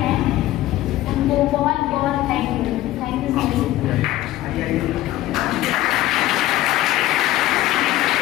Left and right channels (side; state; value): right; quieter; 15.5 dB